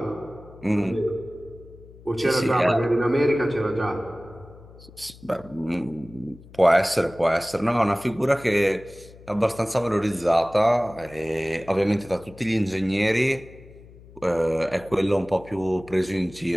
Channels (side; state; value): left; noise; hum, 21 dB below the sound